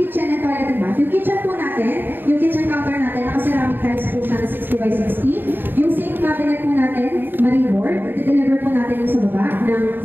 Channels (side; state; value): left; late; 0.094 ms